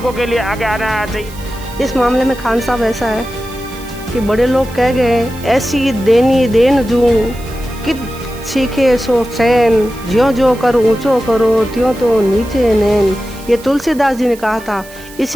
के लिए आगे आना चाहिए। इस मामले में खान साहब ऐसा है कि बड़े लोग कह गए, ऐसी देनी देन जूं कि सीखे सो चैन, ज्यों ज्यों कर ऊंचो करो त्यों तो नीचे नैन। ये तुलसीदास जी ने कहा था।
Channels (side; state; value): right; noise; hiss, 20 dB below the sound